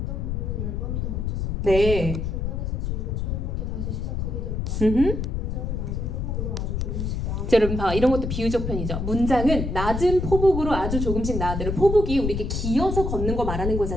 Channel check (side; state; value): left; noise; rumble, 2 dB below the sound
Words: 부분은 10번 더 고쳤었다. 네. 중간에서 지우고 처음부터 다시 시작하기도 했다. 문장은 낮은 호흡으로 아주 조금씩 나아. 자, 여러분 봐. 이런 것도 비유적 편이죠. 문장은 낮은 포복으로 아주 조금씩 나아들어. 포복이 우리 이렇게 기어서 걷는 거 말하는